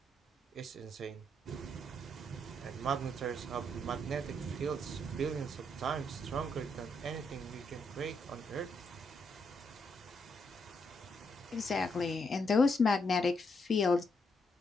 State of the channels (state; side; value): normal; both; correlation 0.77